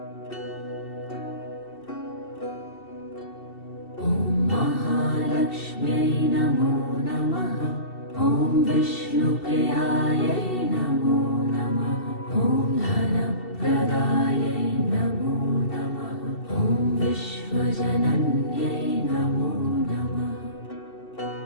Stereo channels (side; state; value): right; late; 2.7 ms